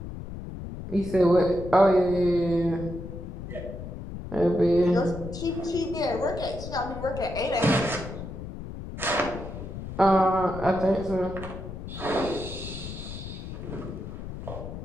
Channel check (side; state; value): left; noise; rumble, 9 dB below the sound